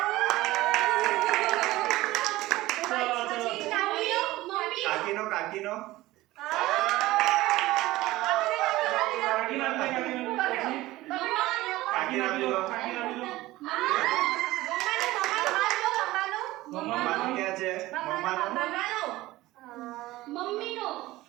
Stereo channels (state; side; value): quieter; left; 17.8 dB